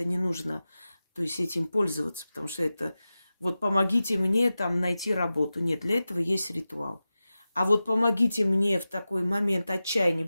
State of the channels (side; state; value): both; inverted; correlation -0.94